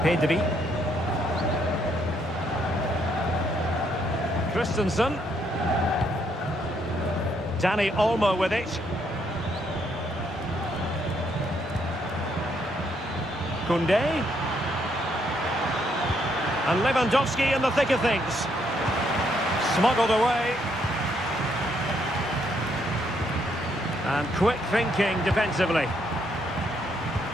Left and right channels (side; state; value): both; normal; correlation 0.73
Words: Pedri. Christensen. Dani Olmo with it. Koundé. And Lewandowski in the thick of things. Smuggled away. And quick thinking defensively.